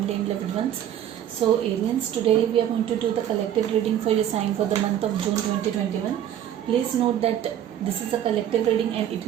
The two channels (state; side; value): quieter; left; 10.6 dB